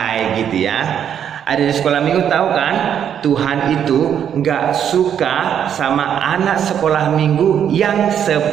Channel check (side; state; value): left; quieter; 8.9 dB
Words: gitu ya. Ada di sekolah minggu tahu kan, Tuhan itu nggak suka sama anak sekolah minggu yang